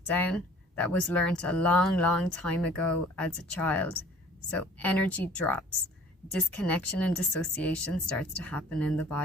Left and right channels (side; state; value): both; normal; correlation 0.50